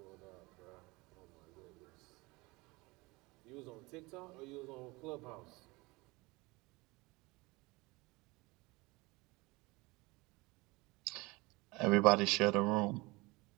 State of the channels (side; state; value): left; quieter; 23.5 dB